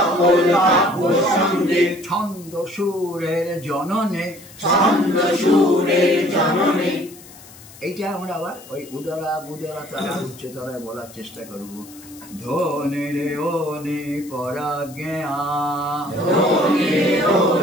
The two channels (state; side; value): noise; left; hiss, 20 dB below the sound